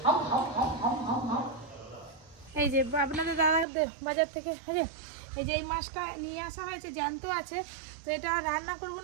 এই যে আপনাদের দাদা বাজার থেকে এই যে এই মাছটা নিয়ে আসা হয়েছে, জ্যান্ত আছে। তো এটা রান্না করবো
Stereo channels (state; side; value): drops out; left; at 3.7 s